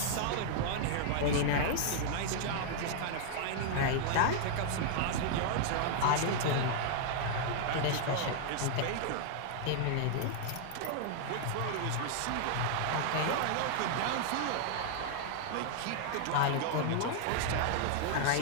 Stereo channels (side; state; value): both; different; correlation -0.01